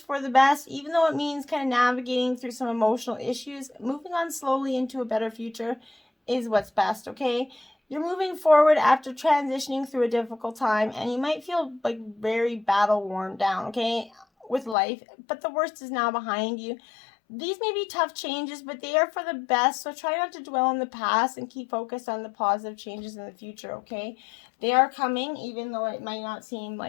the best, even though it means kind of navigating through some emotional issues. Moving on slowly into a better future is what's best, okay? You're moving forward after transitioning through a difficult time, and you might feel like very battle worn down, okay, with life, but the worst is now behind you. These may be tough changes, but they are for the best, so try not to dwell on the past and keep focused on the positive changes in the future, okay? They are coming, even though it might not seem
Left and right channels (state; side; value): drops out; right; at 14.8 s